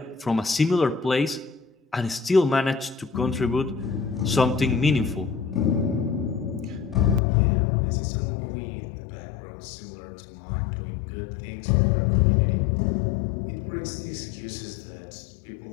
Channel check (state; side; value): drops out; right; at 7.2 s